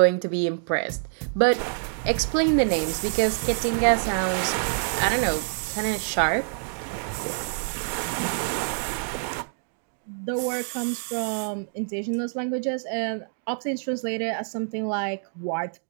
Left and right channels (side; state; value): left; silent; digital silence